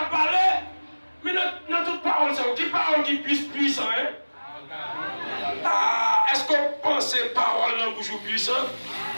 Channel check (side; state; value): both; inverted; correlation -1.00